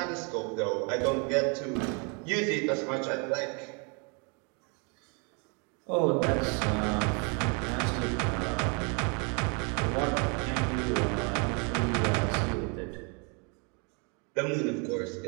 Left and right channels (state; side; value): quieter; left; 34.1 dB